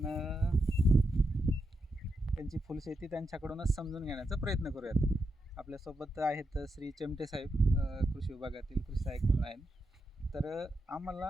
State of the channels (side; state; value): both; normal; correlation 0.85